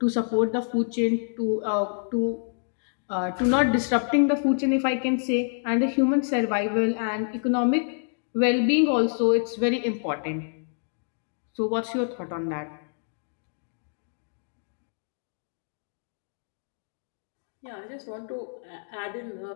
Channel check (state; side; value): silent; right; digital silence